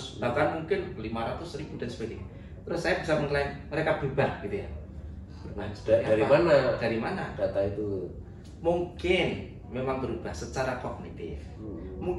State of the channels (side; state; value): both; identical; correlation 1.00